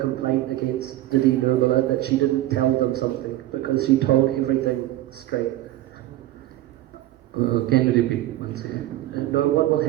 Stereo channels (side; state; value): left; quieter; 15.2 dB